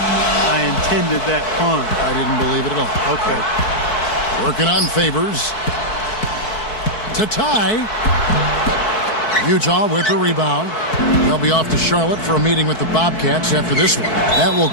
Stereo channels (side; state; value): right; late; 4.6 ms